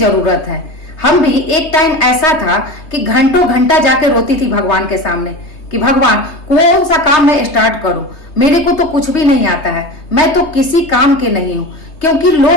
है। हम भी एक टाइम ऐसा था कि घंटों घंटा जाके रोती थी भगवान के सामने कि भगवान कौन सा काम मैं स्टार्ट करूं, मेरे को तो कुछ भी नहीं आता है, मैं तो किसी काम के नहीं हूं। क्योंकि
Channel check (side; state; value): right; late; 3.3 ms